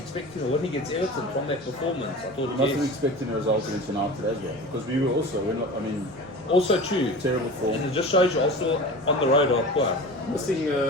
a win against Everton from that performance. I thought, Wasn't yes. expecting a result against United as well, because we were also, Also true. terrible form. And it just shows you Arsenal on the road are poor. Missing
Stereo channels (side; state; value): both; normal; correlation 0.34